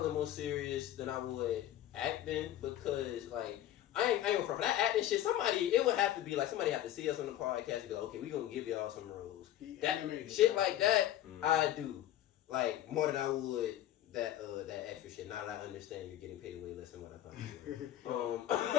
more serious than I would acting because like I ain't gonna front for that acting shit. It would have to be like somebody have to see us on the podcast and be like, okay, we gonna give y'all some roles. That shit like that, I do like more than I would that extra shit. Now that I understand you're getting paid way less than what I thought you were. But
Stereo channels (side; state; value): right; quieter; 12.7 dB